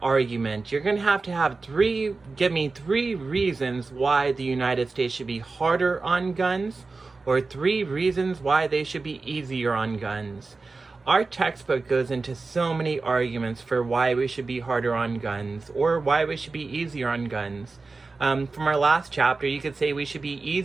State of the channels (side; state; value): left; quieter; 3.9 dB